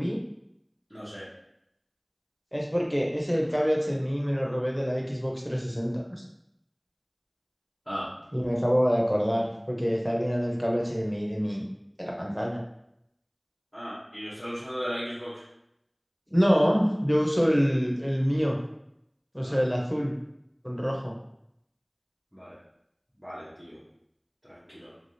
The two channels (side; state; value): both; identical; correlation 1.00